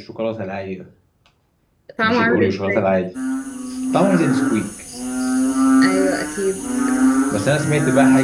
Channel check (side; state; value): both; identical; correlation 1.00